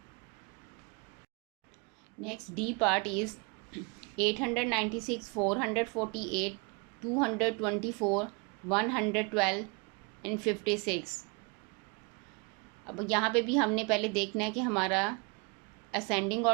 Next D part is 896, 448, 224, 112 and 56. अब यहाँ पे भी हमने पहले देखना है कि हमारा असेंडिंग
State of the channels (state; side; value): quieter; left; 31.6 dB